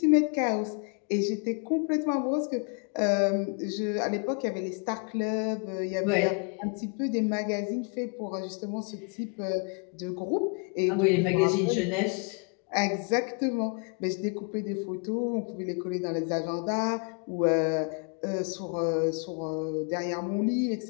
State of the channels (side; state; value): right; quieter; 36.3 dB